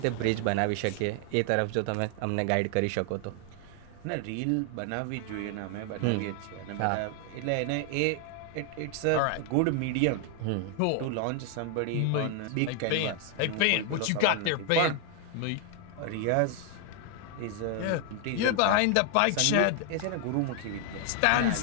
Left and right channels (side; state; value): both; different; correlation 0.00